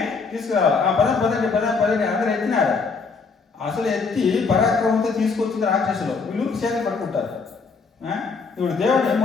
తీసుకురావాలి. ఆ పదండి అందరూ ఎత్తినారు. అసలు ఎత్తి పరాక్రమంతో తీసుకొచ్చింది రాక్షసులు. వీళ్ళు చేతులు పట్టుకుంటారు. ఇప్పుడు దేవుడు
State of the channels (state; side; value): quieter; right; 4.8 dB